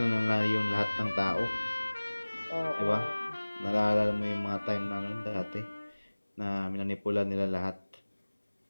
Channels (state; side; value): inverted; both; correlation -1.00